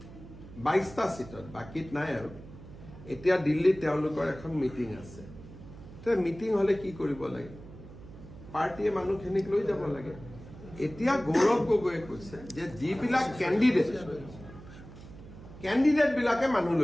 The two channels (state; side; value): noise; right; hum, 16 dB below the sound